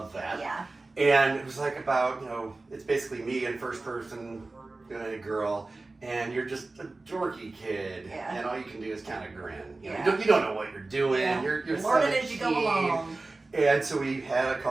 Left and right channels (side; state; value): left; quieter; 3.3 dB